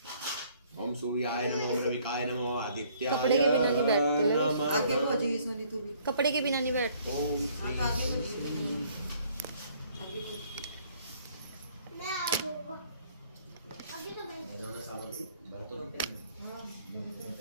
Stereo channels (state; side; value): inverted; both; correlation -0.61